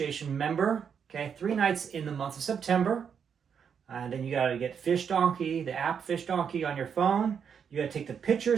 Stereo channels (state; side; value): quieter; left; 7.2 dB